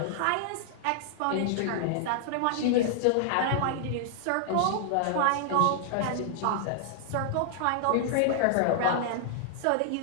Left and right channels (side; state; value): both; different; correlation -0.01